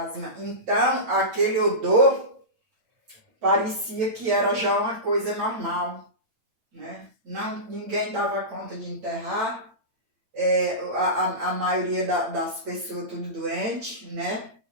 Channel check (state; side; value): late; left; 8.8 ms